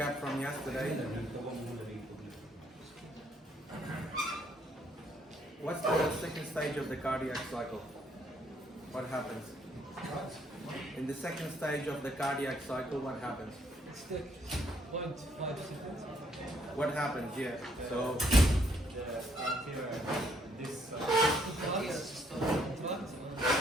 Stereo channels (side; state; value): both; normal; correlation 0.69